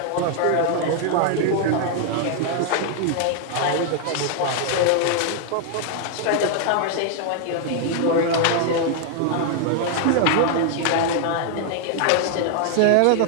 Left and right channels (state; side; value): different; both; correlation 0.00